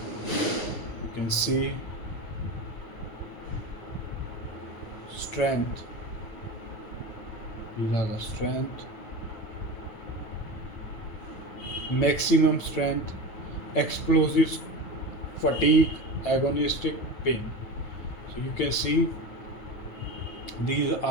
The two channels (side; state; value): right; late; 9.4 ms